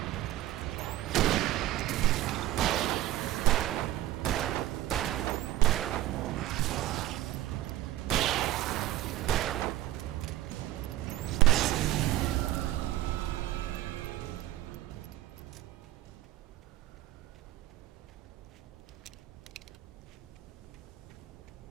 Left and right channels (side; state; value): left; quieter; 14.8 dB